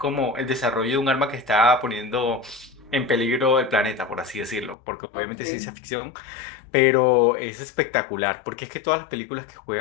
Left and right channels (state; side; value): drops out; right; at 4.8 s